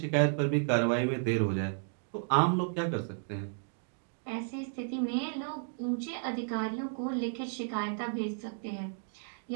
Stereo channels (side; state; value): left; silent; digital silence